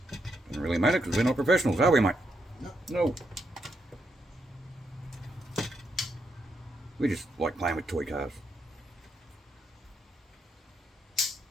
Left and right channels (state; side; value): normal; both; correlation 0.80